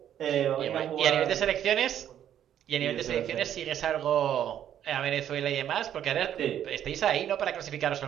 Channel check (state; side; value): quieter; left; 10.3 dB